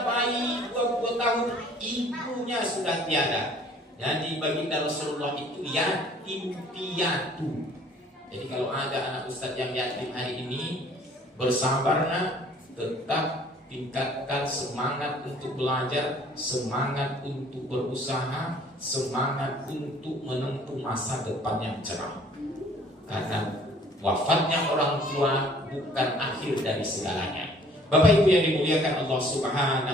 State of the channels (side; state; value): both; normal; correlation 0.55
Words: bayi 20 tahun, ibunya sudah tiada. Jadi baginda Rasulullah itu yatim piatu. Jadi kalau ada anak ustadz yang yatim hari ini, bersabarlah, tetap tingkatkan semangat untuk belajar, semangat untuk berusaha, semangat untuk menempuh masa depan yang cerah. Karena wafatnya orang tua bukan akhir dari segalanya. Bapak Ibu yang dimuliakan Allah